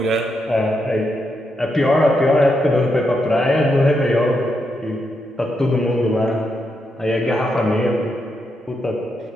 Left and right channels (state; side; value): normal; both; correlation 0.82